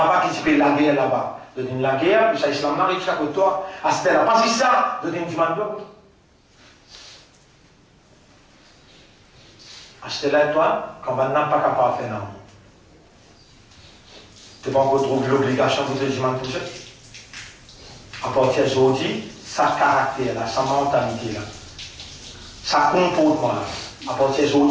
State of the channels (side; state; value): both; identical; correlation 1.00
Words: qui se fait la guerre là-bas. Tu dis la guerre, puis ça islam n'arrive chaque côté toi. À ce là pas si ça, tu dis demande doigt. Achetez-la toi, quand on n'a pas capable de faire non. Tu n'as pas encore trouvé l'obligation de te dire toucher. À partir d'aujourd'hui, sa caractère, là, sa mentalité, là, sa comportement, là, à partir